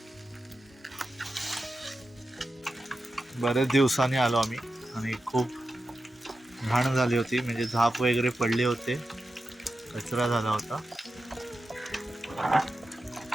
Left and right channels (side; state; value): both; normal; correlation 0.90